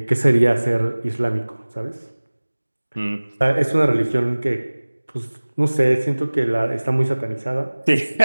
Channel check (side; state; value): both; inverted; correlation -1.00